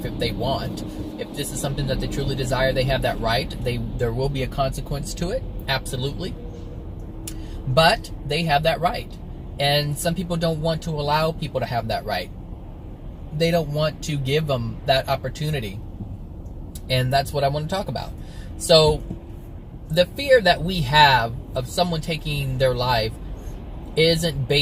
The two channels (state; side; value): identical; both; correlation 1.00